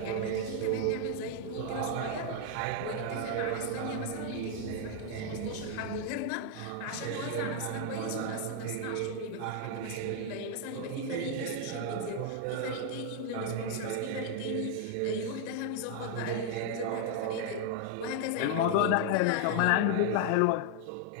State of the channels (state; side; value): different; both; correlation 0.00